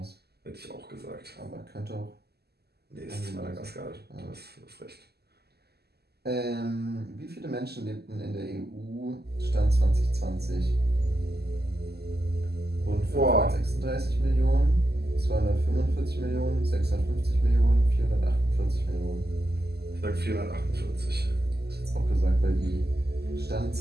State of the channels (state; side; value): late; left; 0.46 ms